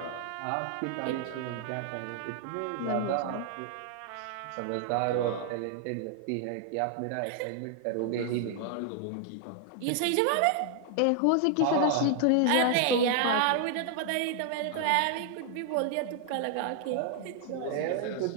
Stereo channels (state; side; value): different; both; correlation 0.00